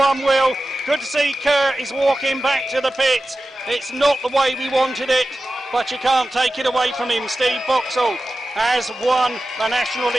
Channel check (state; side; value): normal; both; correlation 0.94